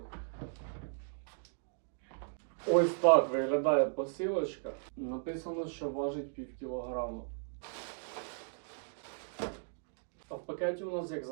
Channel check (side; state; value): left; silent; digital silence